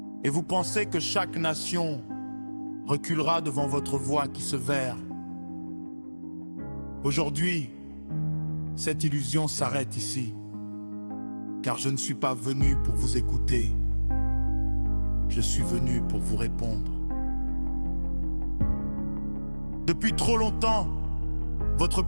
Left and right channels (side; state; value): both; inverted; correlation -1.00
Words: Et vous pensez que chaque nation reculera devant votre voix qui se verre. Aujourd'hui, cette illusion s'arrête ici. Car je ne suis pas venu pour vous écouter. Je suis venu pour vous répondre. Depuis trop longtemps, votre